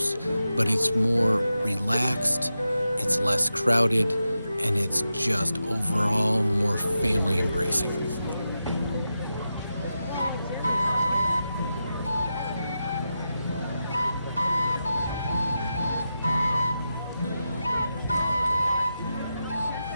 but it's more relaxed, it's less crowded, and it's just overall more family embracing.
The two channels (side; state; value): both; inverted; correlation -0.89